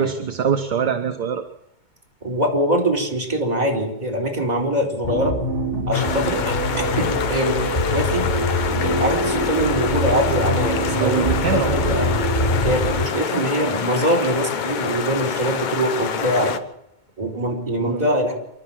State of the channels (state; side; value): late; right; 2.2 ms